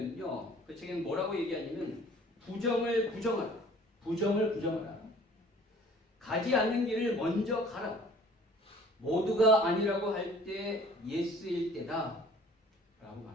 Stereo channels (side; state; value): both; normal; correlation 0.51